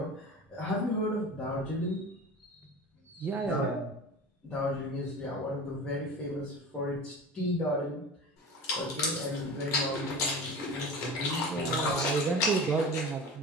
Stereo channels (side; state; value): both; normal; correlation 0.33